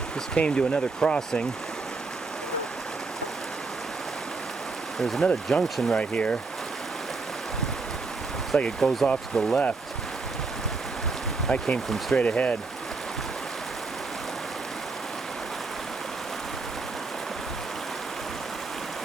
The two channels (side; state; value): left; quieter; 4.0 dB